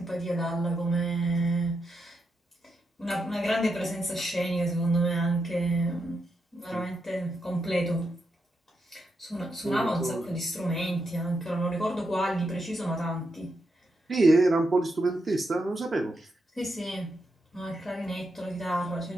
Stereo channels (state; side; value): normal; both; correlation 0.84